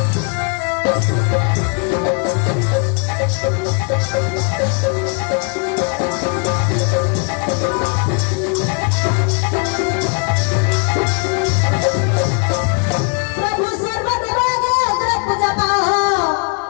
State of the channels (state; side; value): quieter; right; 38.7 dB